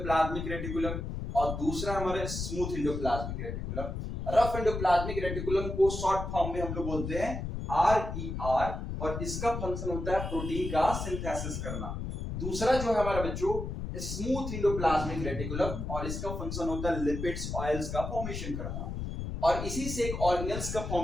रेटिकुलम और दूसरा हमारा smooth endoplasmic reticulum. Rough endoplasmic reticulum को शॉर्ट फॉर्म में हम लोग बोलते हैं RER, और इसका फंक्शन होता है प्रोटीन का सिंथेसिस करना। दूसरा जो है हमारा बच्चों स्मूथ एंडोप्लाज्मिक रेटिकुलम, और इसका फंक्शन होता है लिपिड्स ऑयल्स का फॉर्मेशन करना। और इसी से एक ऑर्गेनेल्स का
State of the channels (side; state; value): left; noise; rumble, 5 dB below the sound